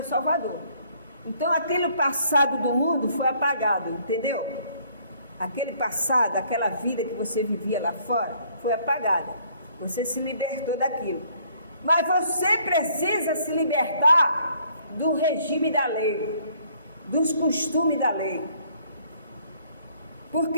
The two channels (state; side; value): inverted; both; correlation -0.63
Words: Salvador. Então, aquele passado do mundo foi apagado, entendeu? Aquele passado, aquela vida que você vivia lá fora, foi apagada. Você se libertou daquilo. Mas você precisa se libertar do regime da lei, dos costumes da lei.